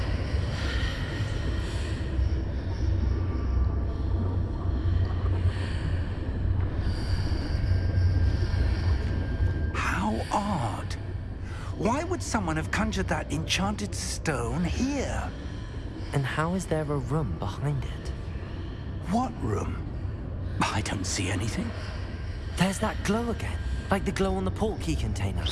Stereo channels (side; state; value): both; identical; correlation 1.00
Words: How odd. Why would someone have conjured that enchanted stone here? And how is there a room behind it? What room? I don't see anything. There's that glow again, like the glow on the portkey container.